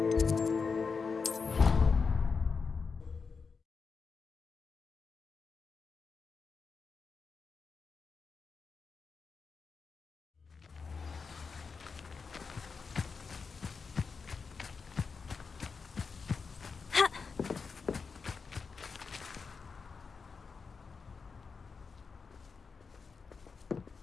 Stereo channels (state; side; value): quieter; right; 5.1 dB